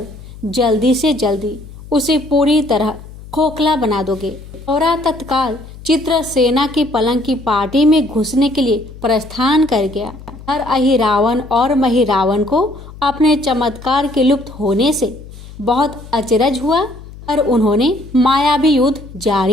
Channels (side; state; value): left; noise; hum, 16 dB below the sound